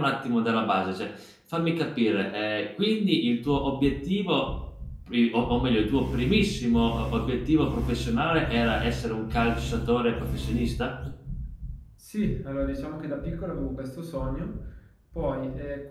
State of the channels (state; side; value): identical; both; correlation 1.00